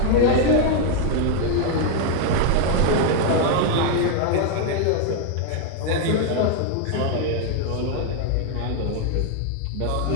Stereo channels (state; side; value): different; both; correlation 0.01